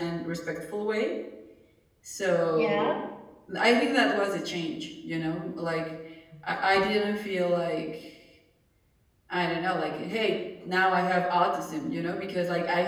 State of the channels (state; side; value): identical; both; correlation 1.00